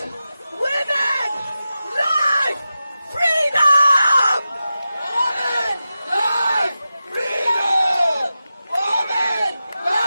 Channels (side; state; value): both; inverted; correlation -0.92